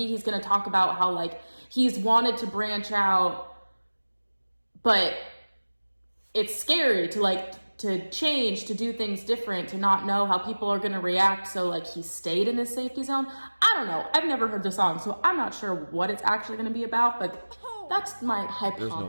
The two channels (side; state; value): both; inverted; correlation -1.00